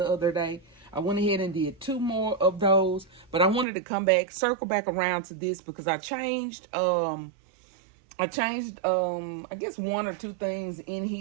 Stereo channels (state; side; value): drops out; left; at 3.7 s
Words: other day. I went ahead and did 2 more of those, but I wanted to come back, circle back around to this because I changed, I guess 1 or 2 things in